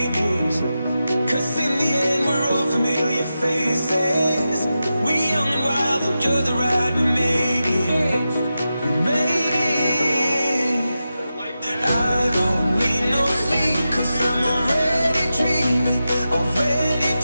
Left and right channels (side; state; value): both; inverted; correlation -0.91